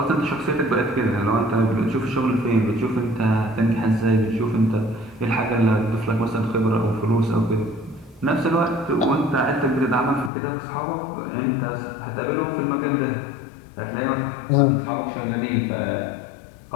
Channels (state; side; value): drops out; right; at 10.3 s